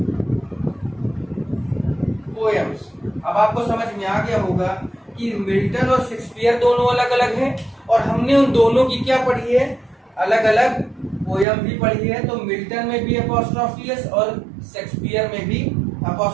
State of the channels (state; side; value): drops out; left; at 11.5 s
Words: पोएम्स। अब आपको समझ में आ गया होगा कि मिल्टन और शेक्सपियर दोनों अलग अलग हैं और हमने उन दोनों की क्या पढ़ी है, अलग अलग पोयम भी पढ़ी है। तो मिल्टन में भी अपॉस्ट्रोफी एस और शेक्सपियर में भी